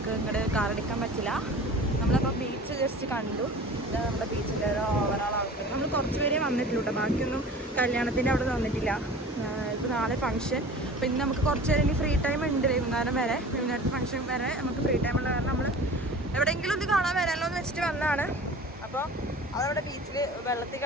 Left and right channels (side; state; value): both; normal; correlation 0.41